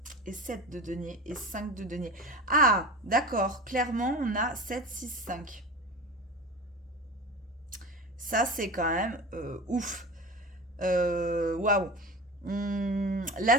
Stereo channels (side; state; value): both; normal; correlation 0.31